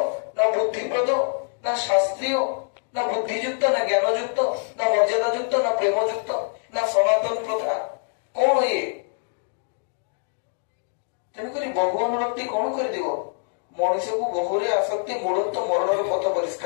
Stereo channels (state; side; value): silent; right; 59 dB below the other